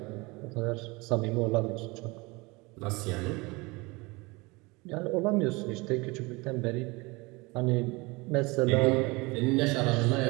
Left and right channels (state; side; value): quieter; left; 25.0 dB